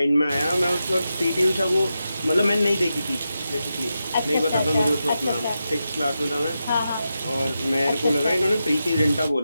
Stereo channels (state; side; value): inverted; both; correlation -0.89